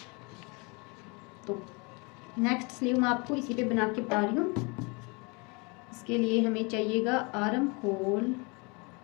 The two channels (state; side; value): quieter; right; 29.8 dB